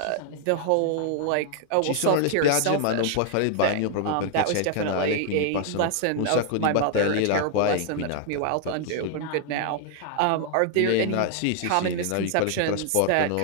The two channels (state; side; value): different; both; correlation 0.00